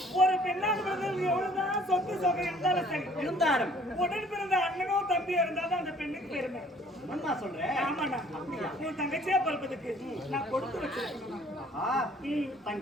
ஒரு பெண்ணாக பிறந்தது எவ்வளவுதான் சொத்து சொகை இருந்தாலும் சரி, இருந்தாலும் உடன் பிறந்த அண்ணனோ தம்பியோ இருந்தாலும் அந்த பெண்ணுக்கு பெருமை. என்னம்மா சொல்றேன்? ஆமாண்ணா. உன் தங்கச்சியா பிறப்பதுக்கு நான் கொடுத்து வச்சிருக்கேன்.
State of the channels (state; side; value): normal; both; correlation 0.57